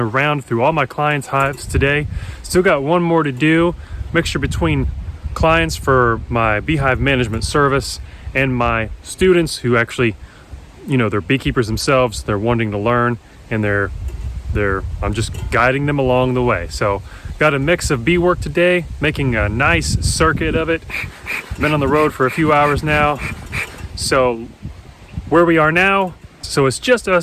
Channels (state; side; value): identical; both; correlation 1.00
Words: round through all my clients' hives today. Still got one more to do. Mixture between clients for my beehive management service and my students who actually, they're beekeepers themselves. They're wanting to learn and I'm just guiding them along the way. So got a mix of bee work today, making a nice circuit of it. Been on the road for a few hours now. So where we are now, so it's just